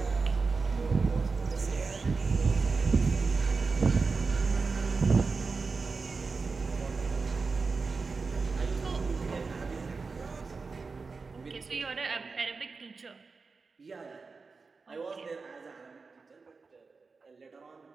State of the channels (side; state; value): left; quieter; 4.4 dB